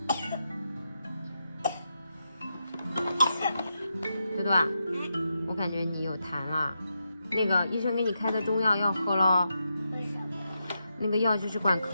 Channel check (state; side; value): inverted; both; correlation -0.85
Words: 多多啊，我感觉你有痰了。那个医生给你开的中药要喝咯。为什么？那个药就是管